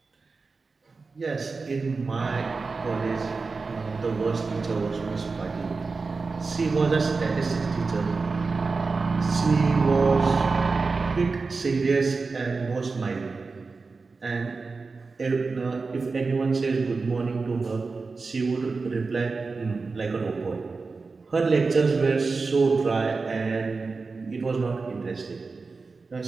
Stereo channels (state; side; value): quieter; left; 4.2 dB